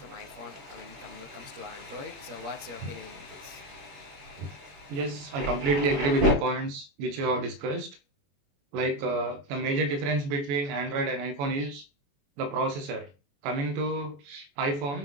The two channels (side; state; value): left; late; 21 ms